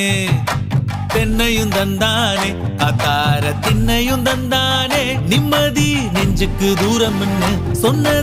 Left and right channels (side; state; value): both; identical; correlation 1.00